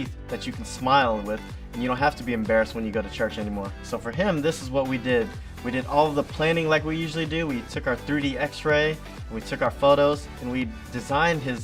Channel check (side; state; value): both; identical; correlation 1.00